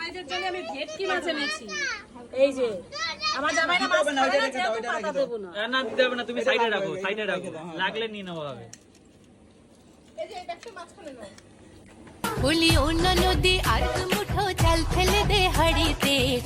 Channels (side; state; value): both; identical; correlation 1.00